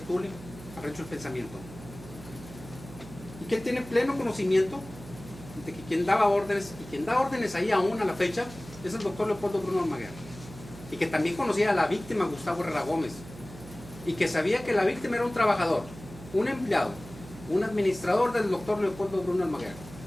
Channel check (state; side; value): noise; right; hum, 16 dB below the sound